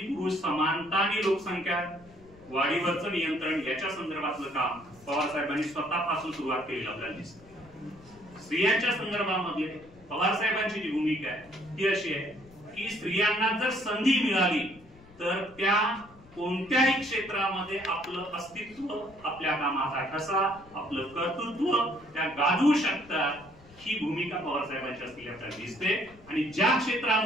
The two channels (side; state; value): left; noise; rumble, 24 dB below the sound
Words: पुरुष समानता आणि लोकसंख्या वाढीवरचं नियंत्रण याच्या संदर्भातलं काम पवार साहेबांनी स्वतःपासून सुरुवात केलेलं आपल्याला दिसतं. स्त्रियांच्या संदर्भामध्ये पवार साहेबांची जी भूमिका आहे ती अशी आहे की स्त्रियांना जर संधी मिळाली तर त्या कोणत्याही क्षेत्रामध्ये आपलं अस्तित्व, आपल्या कामाचा ठसा, आपलं कर्तृत्व त्या गाजवू शकतात. ही भूमिका पवार साहेबांची असलेली आपल्याला दिसते. आणि ज्या